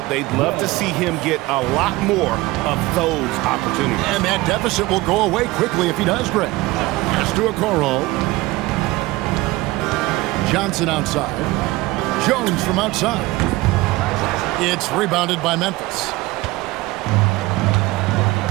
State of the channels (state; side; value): quieter; left; 20.0 dB